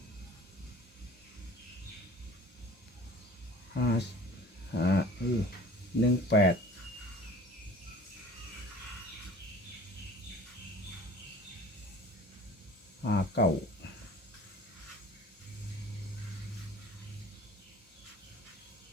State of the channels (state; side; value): normal; both; correlation 0.44